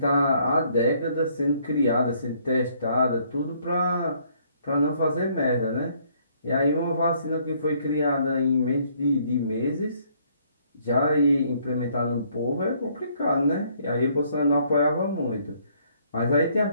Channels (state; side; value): inverted; both; correlation -0.66